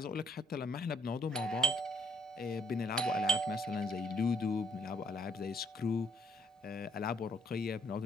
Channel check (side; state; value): both; normal; correlation 0.65